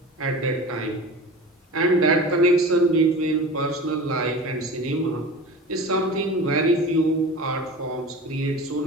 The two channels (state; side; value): normal; both; correlation 0.35